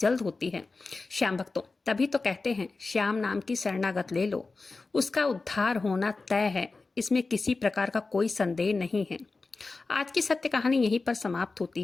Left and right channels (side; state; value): right; quieter; 3.8 dB